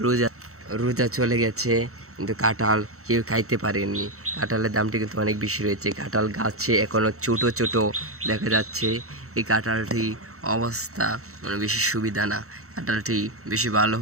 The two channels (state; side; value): late; left; 0.64 ms